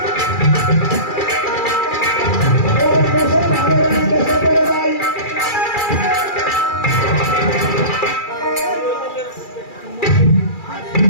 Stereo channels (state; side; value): late; right; 2.3 ms